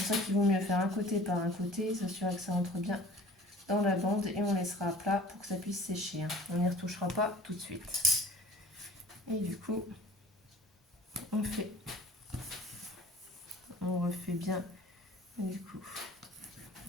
pour ça qu'il vaut mieux faire un côté par un côté, s'assurer que ça entre bien dans la bande et on laissera à plat pour que ça puisse sécher. On n'y retouchera pas tout de suite. Et du coup, on refait bien du coup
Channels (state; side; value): normal; both; correlation 0.47